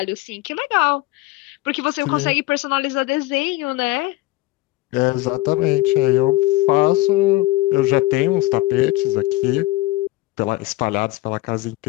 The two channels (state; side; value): quieter; right; 19.0 dB